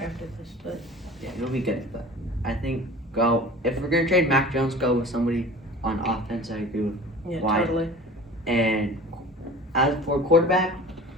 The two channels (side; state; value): both; normal; correlation 0.41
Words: after this, but Yeah, he'll be good. But I think if we're gonna trade Mac Jones, go with somebody on offense. I agree with Wyatt. totally. And as for quarterback,